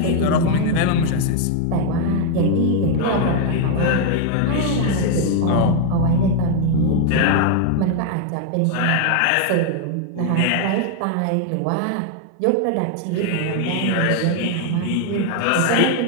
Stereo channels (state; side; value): different; both; correlation 0.01